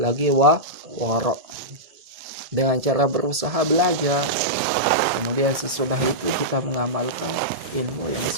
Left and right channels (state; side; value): late; left; 1.7 ms